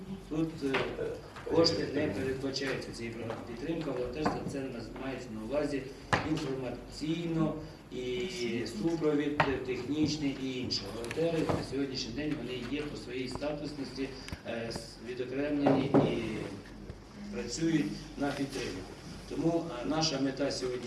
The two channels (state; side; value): identical; both; correlation 1.00